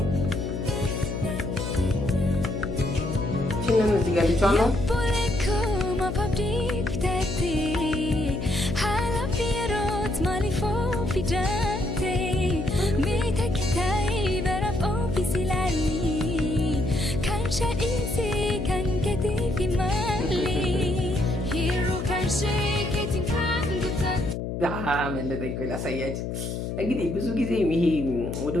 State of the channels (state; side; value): noise; left; hum, 4 dB below the sound